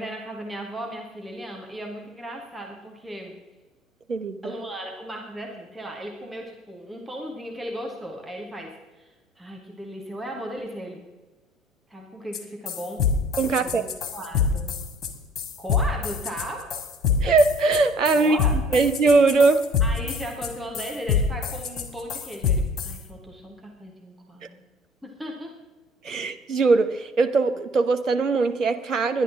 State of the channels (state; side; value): normal; both; correlation 0.56